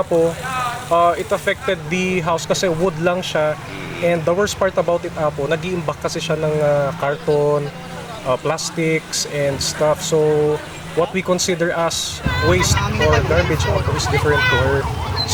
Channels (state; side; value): identical; both; correlation 1.00